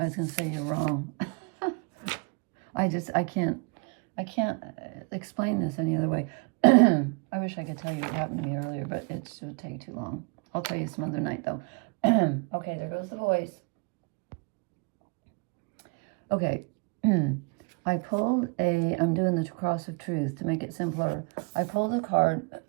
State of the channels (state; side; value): quieter; left; 32.6 dB